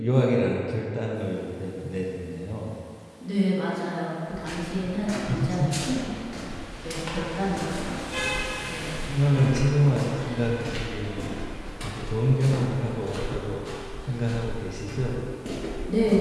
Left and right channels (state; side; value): identical; both; correlation 1.00